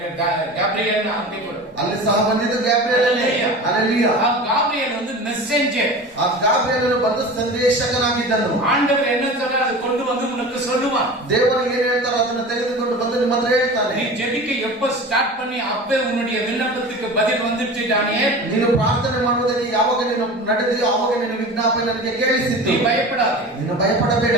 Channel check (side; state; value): both; normal; correlation 0.34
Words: கேப்ரியல் அப்படி கொடு. ಅಲ್ಲಿ ಸಹ ಬಂದಿದ್ದು ಗ್ಯಾಬ್ರಿಯೇಲನೇ. ಹಲ್ಲೆಲೂಯಾ. ಆ ಗಾಬ್ರಿಯಲ್ வந்து மெசேஞ்சர். ಆ ಗ್ಯಾಬ್ರಿಯೇಲನು ಬಂದು ಸಂದೇಶಕನಾಗಿದ್ದನು. ஆண்டவர் என்ன சொல்றார் அது கொண்டு வந்து உனக்கு சொல்லுவான். ದೇವರು ಏನು ಹೇಳ್ತಾರೋ ಅದನ್ನ ತೆಗೆದುಕೊಂಡು ಬಂದು ನಿಮ್ಮ ಹತ್ರ ಹೇಳ್ತಾನೆ. நீ ஜெபிக்க எப்ப ஸ்டார்ட் பண்ணி அப்பே உன்னுடைய விண்ணப்பத்துக்கு பதில் வந்துருச்சு தானியேல். ನೀನು ಪ್ರಾರ್ಥನೆ ಮಾಡುವುದಕ್ಕೆ ಯಾವಾಗ ನೀನು ನಡೆದಿಯೋ ಆವಾಗ ನಿನ್ನ ವಿಜ್ಞಾಪನೆ ನನಗೆ ಕೇಳಿಸಿತು. நீ பயப்படாதே. ನೀನು ಭಯಪಡಬೇಡ.